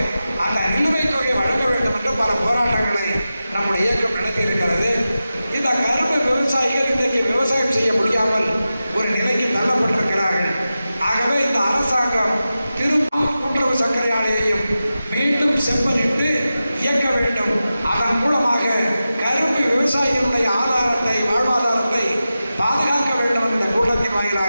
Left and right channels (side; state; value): both; inverted; correlation -0.93